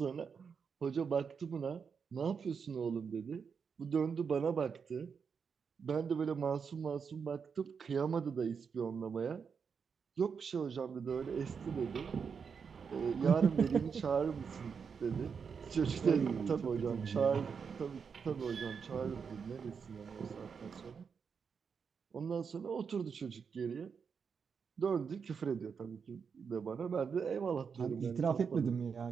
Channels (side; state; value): left; quieter; 6.2 dB